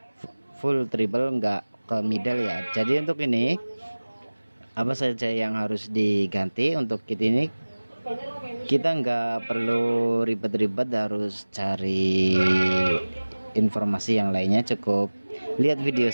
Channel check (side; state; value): both; inverted; correlation -1.00